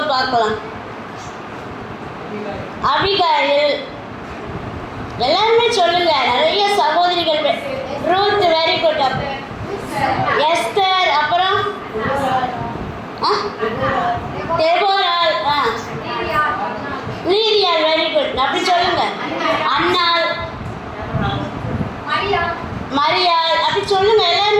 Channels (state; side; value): identical; both; correlation 1.00